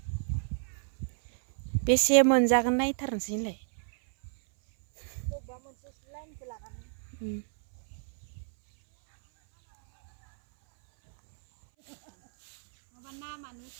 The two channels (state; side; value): silent; left; 58 dB below the other